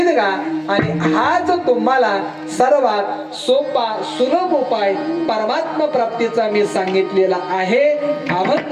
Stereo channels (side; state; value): both; identical; correlation 1.00